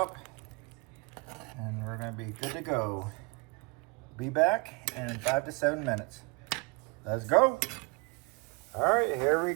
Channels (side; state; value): left; quieter; 29.2 dB